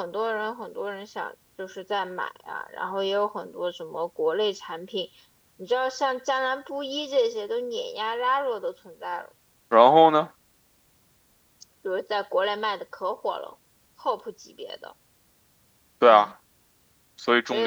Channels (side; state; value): both; identical; correlation 1.00